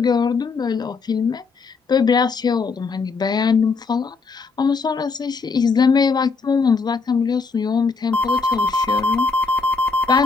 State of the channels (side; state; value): right; quieter; 4.6 dB